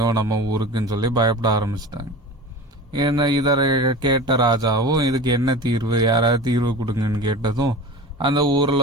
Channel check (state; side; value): normal; both; correlation 0.34